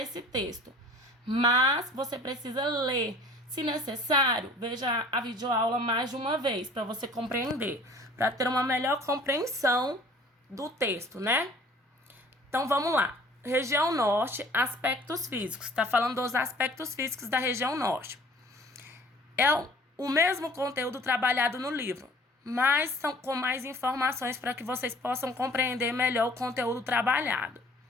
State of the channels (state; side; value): normal; both; correlation 0.50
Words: texto. Mas você precisa ler. Se necessário, veja a videoaula mais de uma vez para você compreender. Para ter uma melhor compreensão do texto, né? Então, vamos lá. Região Norte, aspectos físicos. Está falando dos aspectos físicos da região Norte. É o mesmo conteúdo trabalhado no livro, mas são com mais informações para que vocês possam compreender melhor o conteúdo trabalhado.